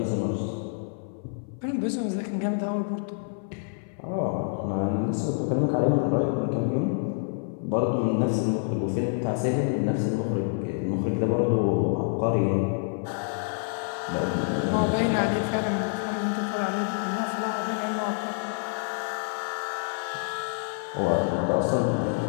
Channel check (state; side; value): silent; right; 56 dB below the other